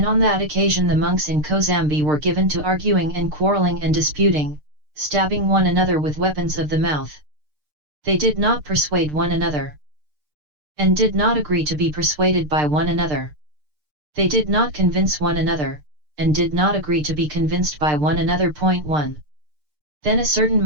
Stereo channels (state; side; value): late; left; 6.6 ms